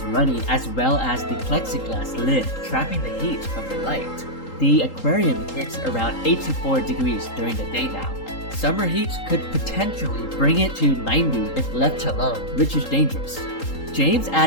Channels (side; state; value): right; late; 3.8 ms